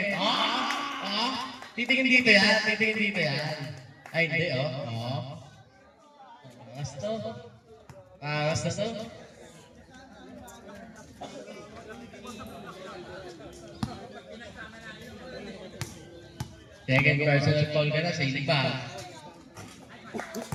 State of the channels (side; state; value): both; identical; correlation 1.00